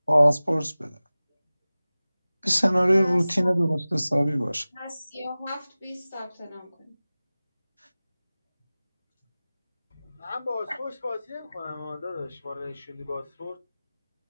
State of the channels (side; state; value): both; inverted; correlation -0.98